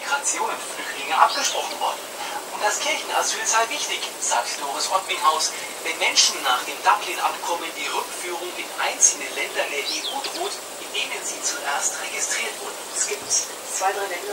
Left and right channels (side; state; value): both; identical; correlation 1.00